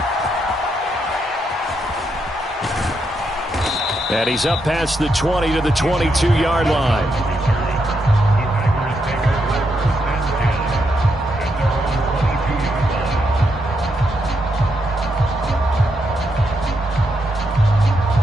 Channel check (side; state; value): both; normal; correlation 0.80